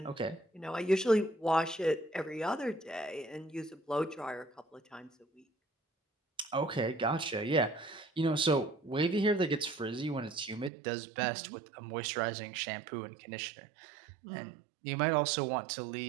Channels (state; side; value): drops out; left; at 10.7 s